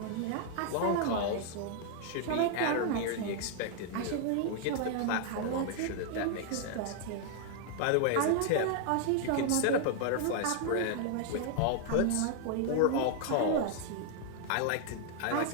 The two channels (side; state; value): both; different; correlation 0.00